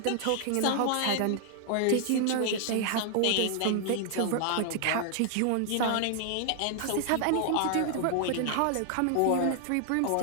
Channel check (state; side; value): different; both; correlation 0.00